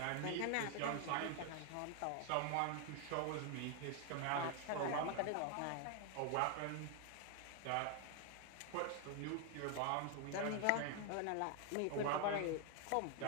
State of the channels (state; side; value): different; both; correlation 0.00